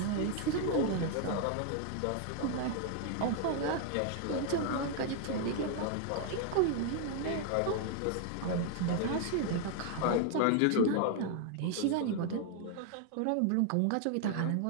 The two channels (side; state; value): both; different; correlation 0.00